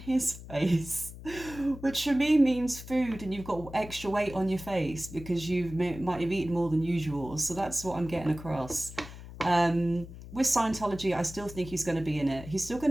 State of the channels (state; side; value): noise; left; hum, 14 dB below the sound